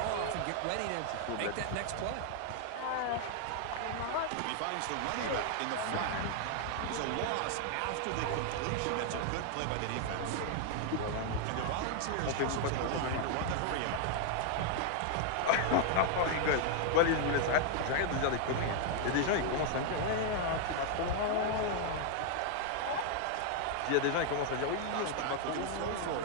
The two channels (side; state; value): both; different; correlation 0.00